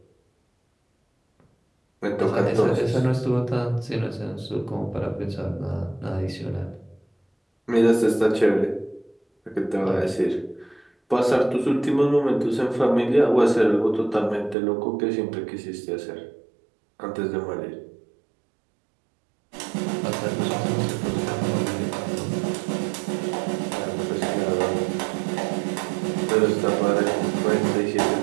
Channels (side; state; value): left; drops out; at 14.6 s